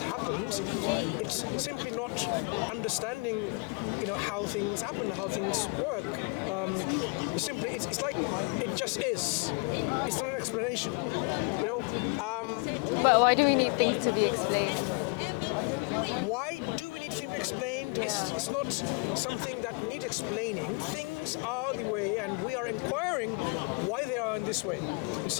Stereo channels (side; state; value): right; quieter; 32.5 dB